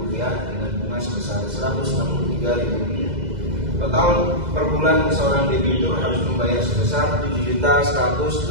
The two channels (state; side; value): late; left; 2.0 ms